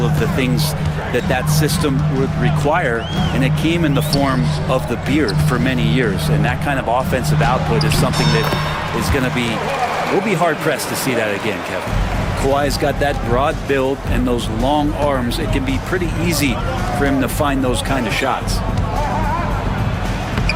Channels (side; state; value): both; identical; correlation 1.00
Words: of the things that that system would require, and it came in the form of the beard for many years. And that kind of offensive output is something that is going to be, we'll be hard-pressed to see that again, Kevin. Kawhi's got that broad build and those long arms. It can be pretty easy for him to find those kind of shots.